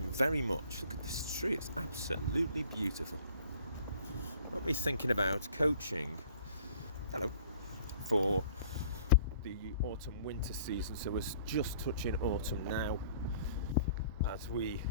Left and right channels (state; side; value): inverted; both; correlation -0.53